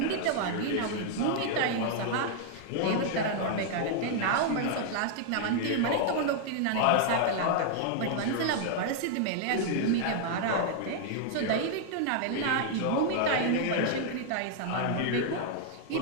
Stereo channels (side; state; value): both; different; correlation 0.00